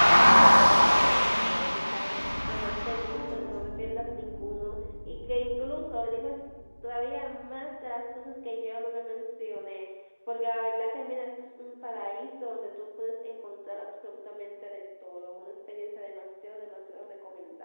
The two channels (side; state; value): both; inverted; correlation -1.00